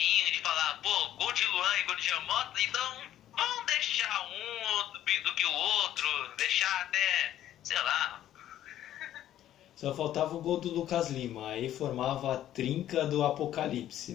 de falar, pô, gol de Luan e gol de Jean Mota, então vamos deixar um do que o outro, deixar até, sei lá. Só faltava o gol do Lucas Lima, aí formava a trinca do apocalipse,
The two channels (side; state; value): right; quieter; 12.2 dB